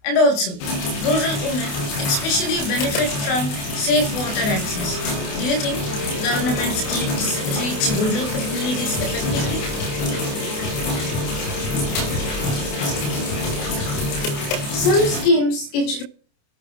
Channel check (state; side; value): late; right; 28 ms